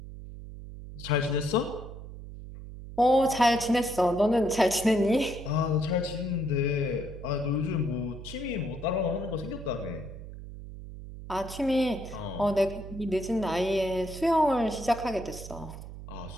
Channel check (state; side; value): noise; right; hum, 12 dB below the sound